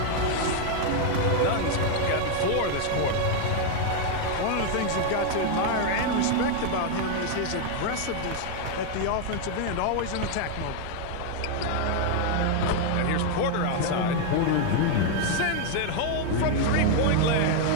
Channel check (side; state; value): both; different; correlation 0.00